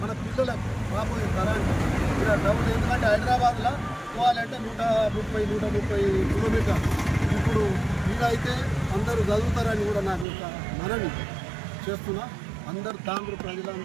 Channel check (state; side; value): drops out; left; at 10.2 s